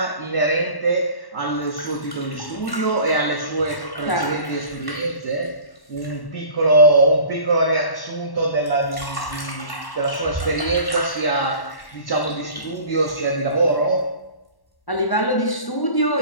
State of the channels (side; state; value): right; late; 1.1 ms